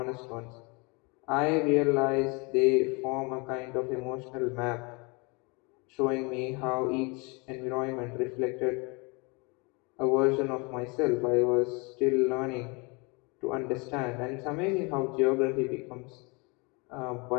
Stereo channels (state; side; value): quieter; right; 29.4 dB